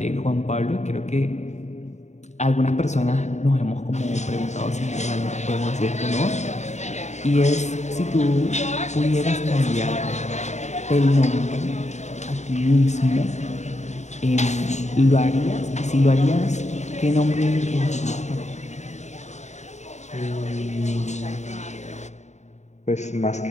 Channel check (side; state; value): right; late; 0.33 ms